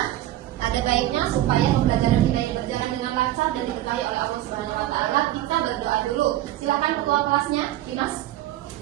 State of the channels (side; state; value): left; quieter; 14.3 dB